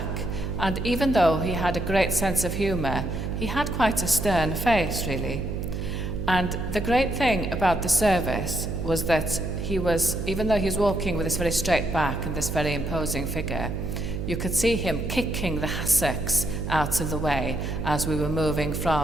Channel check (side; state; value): right; noise; hum, 4 dB below the sound